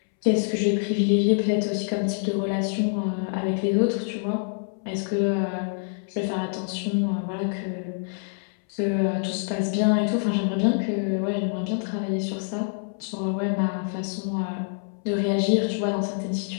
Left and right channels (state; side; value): silent; right; 61 dB below the other